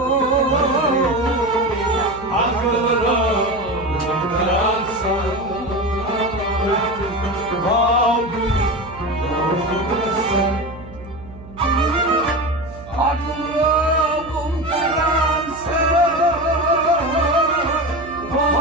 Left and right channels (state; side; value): noise; right; hum, 17 dB below the sound